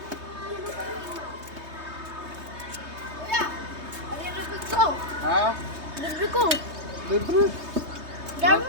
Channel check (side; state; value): left; late; 3.2 ms